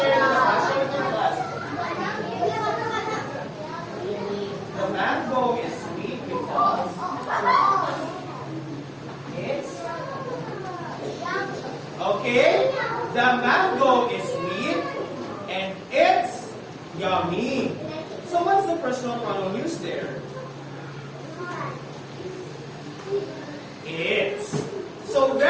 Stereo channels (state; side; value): identical; both; correlation 1.00